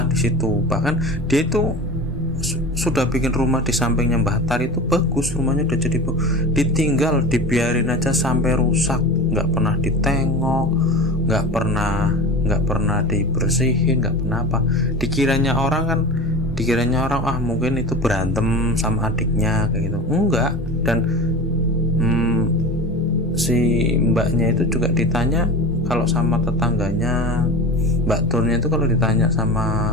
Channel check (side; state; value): both; normal; correlation 0.31